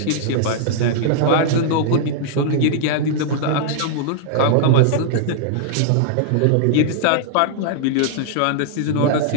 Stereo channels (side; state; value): both; different; correlation -0.01